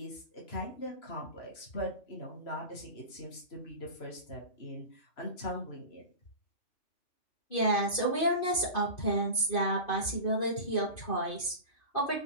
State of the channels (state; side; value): late; right; 2.5 ms